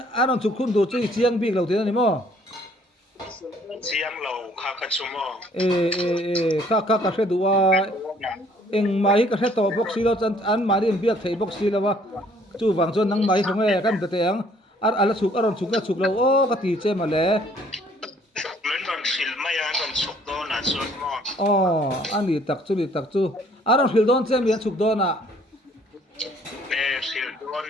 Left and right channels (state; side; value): normal; both; correlation 0.60